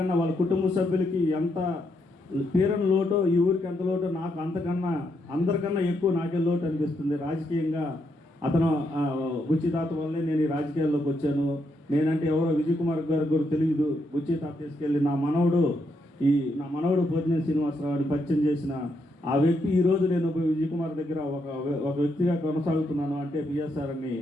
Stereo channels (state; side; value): normal; both; correlation 0.79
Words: వాళ్ళ కుటుంబ సభ్యులకి ఎంత తీరని లోటో, ఈ ఊరికి ఎంత లోటో నాకు అందరికన్నా ఎక్కువ నాకే లోటు అనిపిస్తుంది. రాజకీయంగా అతను బుచ్చి తాత వల్లే నేను ఈ రాజకీయాల్లోకి వచ్చాను. నేనంటే ఎవరో విజయ్ కుమార్ గారికి కూడా తెలియదు. బుచ్చి తాత తీసుకెళ్ళి నా మనవడు పోతినేని శ్రీనివాసరావుని పరిచయం చేసిన ఆ వ్యక్తి ఈరోజు నేను విజయ్ కుమార్ దగ్గర ఒక వ్యక్తిగా కొనసాగుతున్నాను అంటే పిఎస్ఆర్ అని